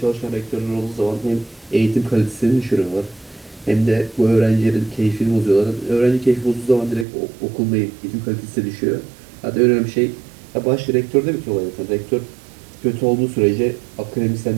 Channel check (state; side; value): drops out; left; at 7.1 s